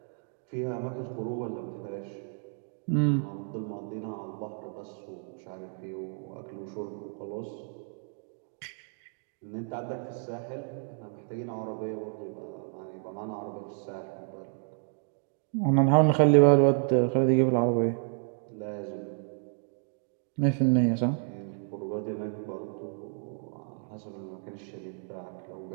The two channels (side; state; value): left; silent; 57 dB below the other